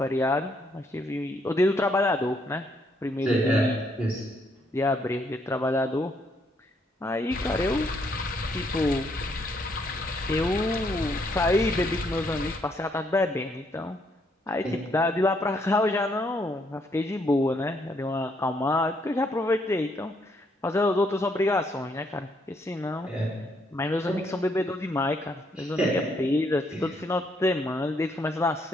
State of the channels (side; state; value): both; normal; correlation 0.72